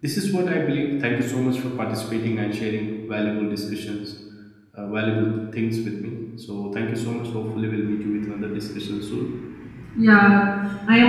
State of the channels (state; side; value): identical; both; correlation 1.00